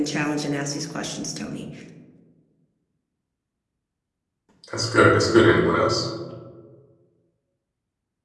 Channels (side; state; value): both; identical; correlation 1.00